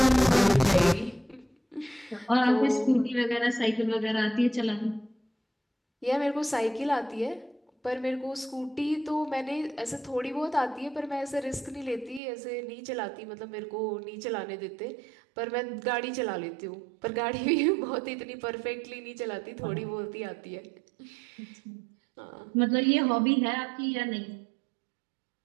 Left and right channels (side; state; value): left; drops out; at 12.2 s